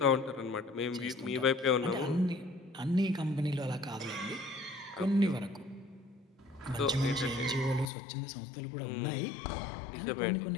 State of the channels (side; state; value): right; drops out; at 7.9 s